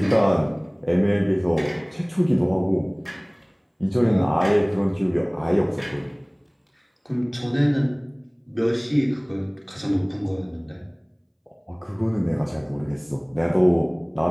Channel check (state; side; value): identical; both; correlation 1.00